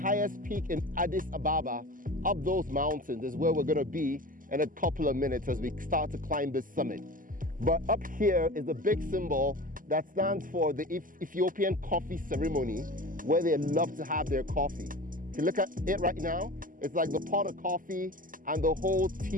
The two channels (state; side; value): late; left; 0.40 ms